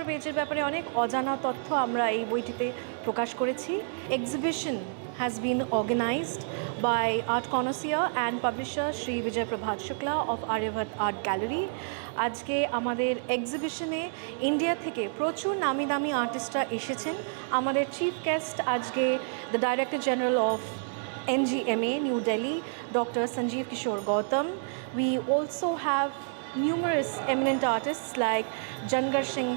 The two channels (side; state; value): left; silent; digital silence